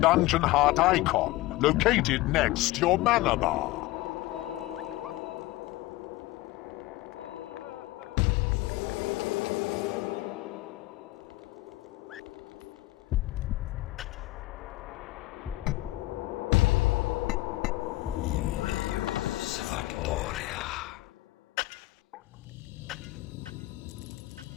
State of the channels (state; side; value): quieter; right; 18.4 dB